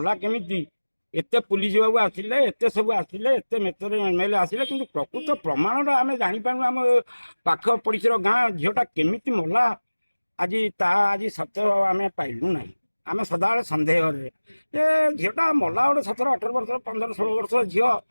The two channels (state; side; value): inverted; both; correlation -1.00